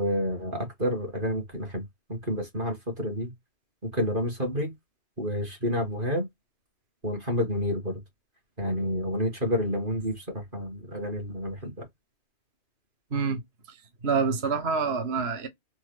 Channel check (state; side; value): late; left; 2.5 ms